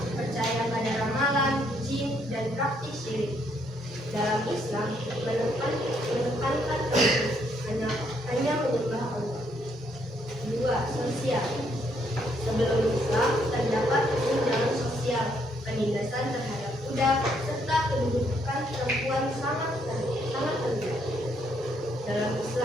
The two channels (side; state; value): both; normal; correlation 0.72